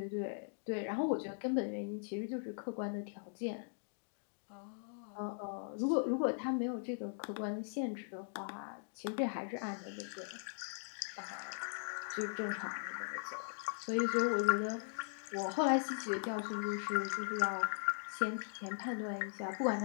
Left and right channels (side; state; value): right; silent; digital silence